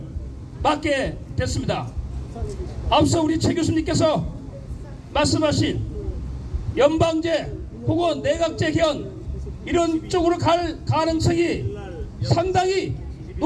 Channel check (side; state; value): both; identical; correlation 1.00